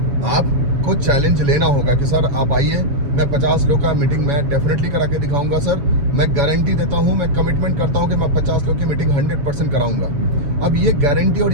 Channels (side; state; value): left; late; 7.1 ms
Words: आपको चैलेंज लेना होगा कि सर आप आइए, मैं 50 लोग का मीटिंग मैं डेफिनेटली करा के दिखाऊंगा सर। मैं गारंटी देता हूं, मैं कमिटमेंट करता हूं कि मैं 50 लोग की मीटिंग 100% कराऊंगा। अब ये गारंटी और